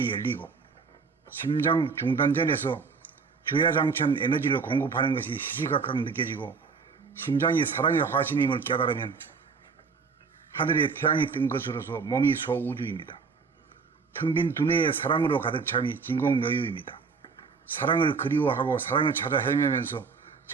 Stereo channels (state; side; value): quieter; left; 5.1 dB